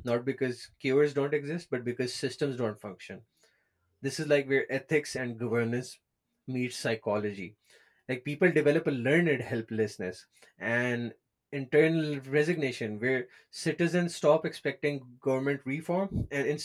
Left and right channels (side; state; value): both; identical; correlation 1.00